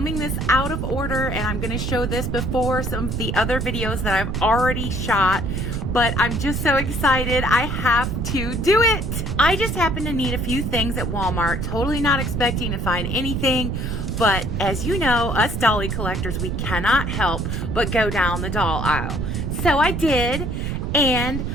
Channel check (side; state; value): right; noise; rumble, 2 dB below the sound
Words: this out of order and I'm gonna show this before some of the other videos that I've already shot, but I'm just so excited I have to do it. I just happened to need a few things at Walmart, totally not expecting to find anything, but as you know, us dolly collectors, we cannot help but go down the doll aisle. So I did, and